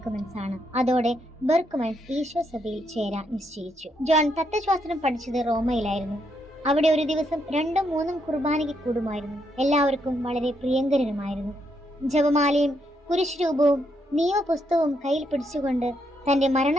ആണ്. അതോടെ ബെർക്ക്മൻസ് ഈശോ സഭയിൽ ചേരാൻ നിശ്ചയിച്ചു. ജോൺ തത്വശാസ്ത്രം പഠിച്ചത് റോമയിലായിരുന്നു. അവിടെ ഒരു ദിവസം 2-3 കുർബാനയ്ക്ക് കൂടുമായിരുന്നു. എല്ലാവർക്കും വളരെ പ്രിയങ്കരനുമായിരുന്നു. ജപമാലയും കുരിശ് രൂപവും നിയമപുസ്തകവും കയ്യിൽ പിടിച്ചുകൊണ്ട് തന്റെ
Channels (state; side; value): normal; both; correlation 0.77